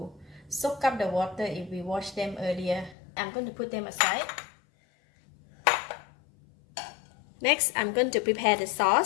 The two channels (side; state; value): right; drops out; at 3.0 s